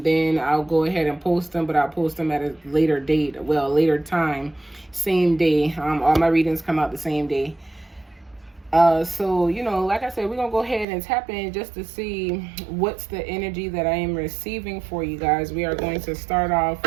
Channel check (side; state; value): left; drops out; at 10.9 s